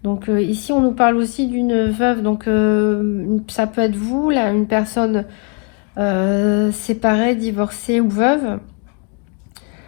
Donc ici, on nous parle aussi d'une veuve. Donc ça peut être vous, là, une personne séparée, divorcée ou veuve.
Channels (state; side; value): quieter; right; 36.8 dB